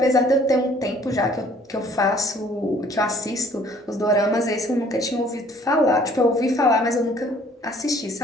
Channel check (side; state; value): both; normal; correlation 0.57